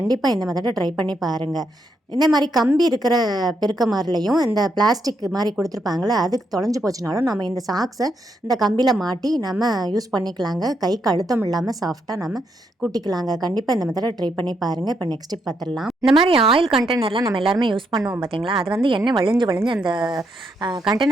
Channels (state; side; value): normal; both; correlation 0.78